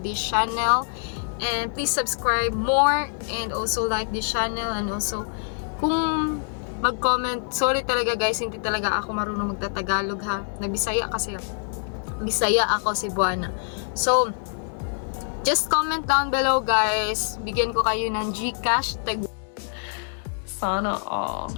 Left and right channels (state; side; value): silent; right; 61 dB below the other